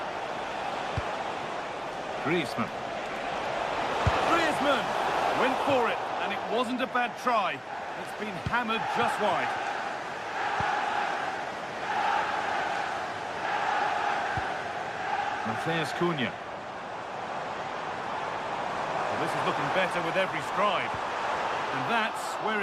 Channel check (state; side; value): identical; both; correlation 1.00